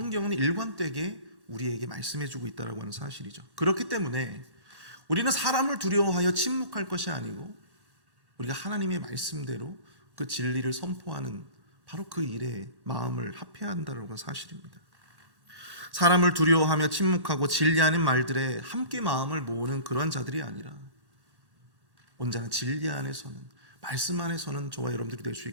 일관되게 우리에게 말씀해주고 있다라고 하는 사실이죠. 그렇기 때문에 우리는 사람을 두려워하여 침묵할 것이 아니고 우리가 하나님의 말씀대로 그 진리를 선포하는 바로 그 일에 마음을 합해야 한다는 사실입니다. 사람을 두려워하며 침묵하고 진리 아닌 말들에 함께 마음을 모으는 그러한 자들이 아니라 언제나 진리 안에서는 말씀 안에서는 저와 여러분들이 될 수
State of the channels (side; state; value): left; late; 1.1 ms